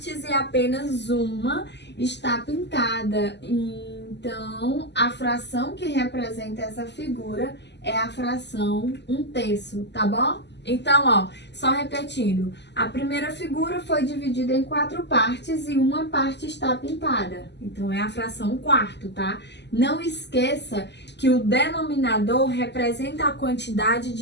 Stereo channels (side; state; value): right; late; 0.50 ms